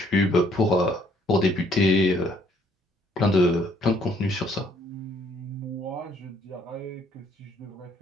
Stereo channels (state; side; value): normal; both; correlation 0.65